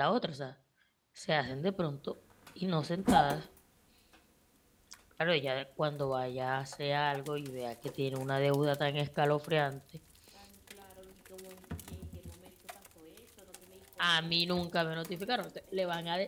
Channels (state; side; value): identical; both; correlation 1.00